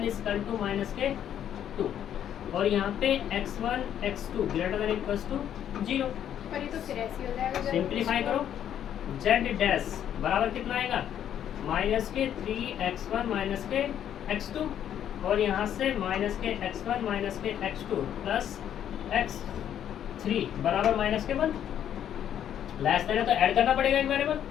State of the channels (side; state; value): right; quieter; 10.0 dB